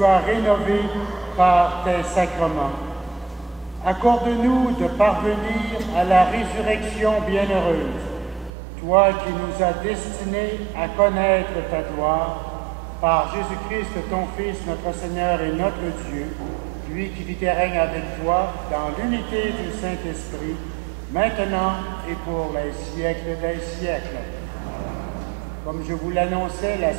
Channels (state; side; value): drops out; left; at 8.5 s